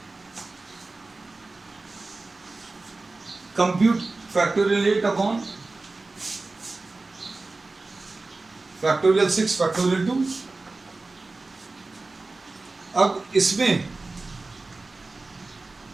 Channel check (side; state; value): left; quieter; 3.4 dB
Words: compute factorial 8 upon factorial 6 factorial 2। अब इसमें